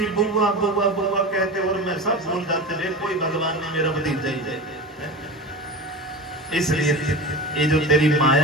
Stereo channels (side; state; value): both; normal; correlation 0.28